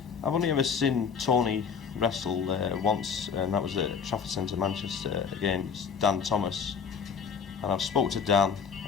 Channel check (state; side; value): quieter; right; 6.3 dB